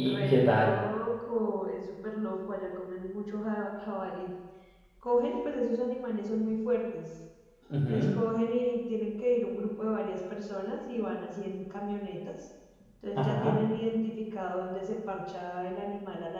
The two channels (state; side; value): identical; both; correlation 1.00